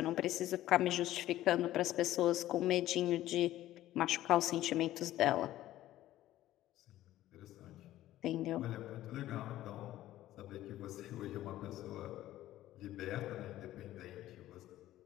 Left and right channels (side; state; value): right; quieter; 14.4 dB